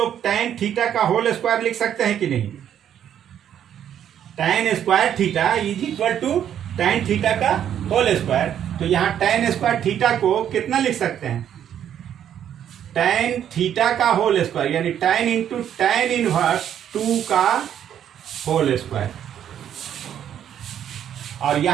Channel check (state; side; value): quieter; left; 9.8 dB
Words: tan थीटा का होल स्क्वायर लिख सकते हैं कि नहीं, tan square theta is equal to tan theta का होल स्क्वायर। तो यहाँ tan स्क्वायर थीटा को कितना लिख सकते हैं, tan थीटा का होल स्क्वायर, यानी tan इंटू tan इनवर्स 2 का होल स्क्वायर। और